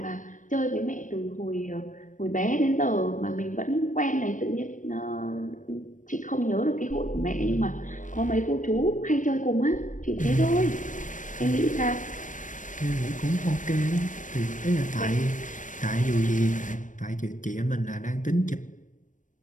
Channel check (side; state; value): right; late; 0.37 ms